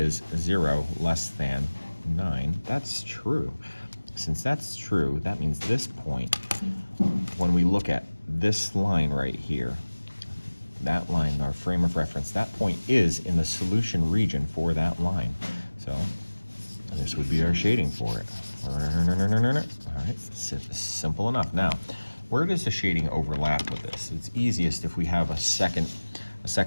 0 less than 9? That's true. Since that's true, that means this point, when we look at this line right here, that line, our frame of reference, that point is in the solution region for that line. So this would be our shading for it. All right, simple enough. Now, where does the shading overlap with this? It's easiest if we have a second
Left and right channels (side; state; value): both; inverted; correlation -1.00